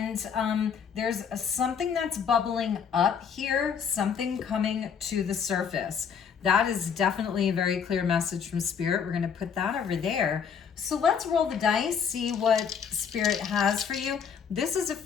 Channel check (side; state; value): right; quieter; 7.0 dB